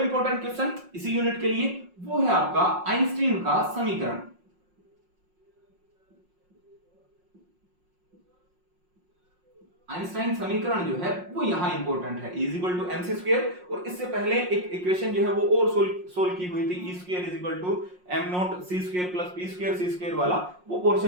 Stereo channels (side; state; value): left; late; 5.5 ms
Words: क्वेश्चन इसी यूनिट के लिए वो है आपका आइंस्टीन का समीकरण। आइंस्टाइन समीकरण जो है वो यहां इंपॉर्टेंट है, E equal to m c square, और इससे पहले एक इक्वेशन जो है वो और सोल्व की हुई थी, E square is equal to m not c square plus p square c square वाला, वो